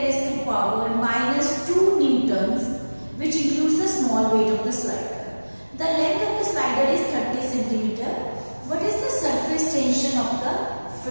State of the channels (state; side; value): inverted; both; correlation -1.00